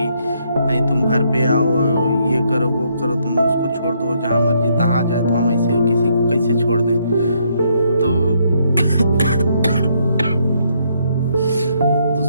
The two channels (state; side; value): inverted; both; correlation -0.72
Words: नहीं, तुम घर पे आओ, ये करो वो करो, तुम उसको छोड़ दो, जहाँ मर्जी तहाँ जाए। तो हम ऐसे किसी को कैसे छोड़ दें। तो,